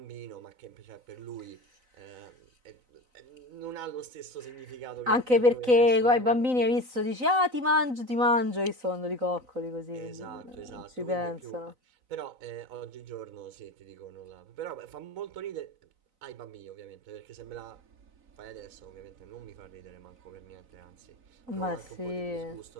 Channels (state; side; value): late; left; 4.0 ms